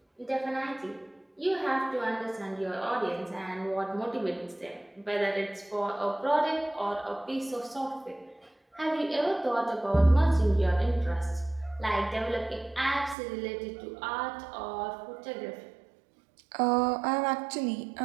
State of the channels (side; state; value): left; drops out; at 13.2 s